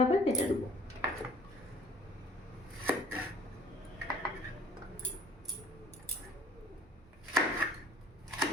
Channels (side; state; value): both; normal; correlation 0.53